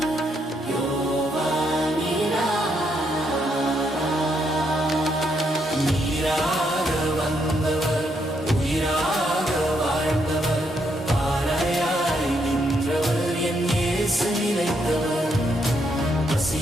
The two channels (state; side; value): normal; both; correlation 0.76